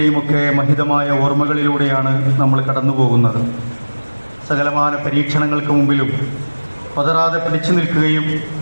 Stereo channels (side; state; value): both; inverted; correlation -1.00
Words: ഒക്കെ മഹിതമായ ഓർമ്മകളിലൂടെയാണ് നമ്മൾ കടന്നു പോകുന്നത്. സകലമാന പരീക്ഷണങ്ങൾക്ക് മുമ്പിലും പതറാതെ പിടിച്ചു നിൽക്കുകയും